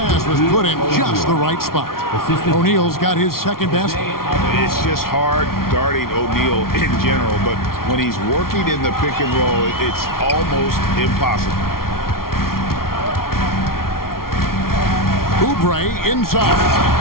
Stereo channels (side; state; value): right; late; 0.93 ms